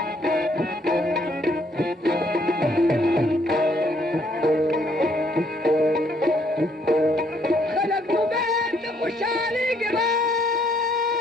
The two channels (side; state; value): both; normal; correlation 0.68